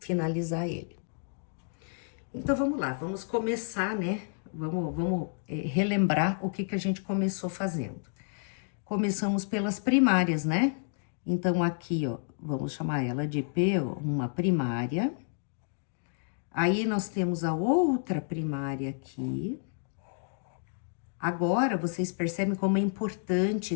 ele. Então, vamos lá, vamos começar, né? Vamos relembrar o que a gente começou fazendo. Começamos pelas primárias, né? Então, aqui, ó, vamos chamar ela de P, ó, uma primária. Aí, nós temos a outra primária aqui. Agora, vocês percebem como é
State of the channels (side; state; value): right; silent; 58 dB below the other